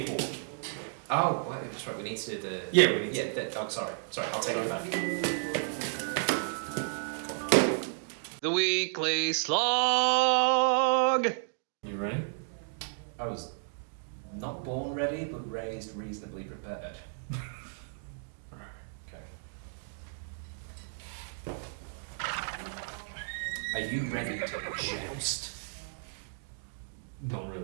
for? Oh, well, that's right. We need to do the. Yeah, we need to. Oh, sorry. I'll take it back. The weekly slog. You ready? I was not born ready, but raised reasonably prepared. Okay. Are you ready to joust? Not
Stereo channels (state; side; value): silent; left; digital silence